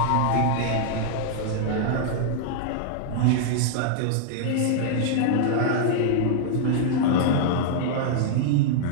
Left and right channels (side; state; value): both; different; correlation -0.01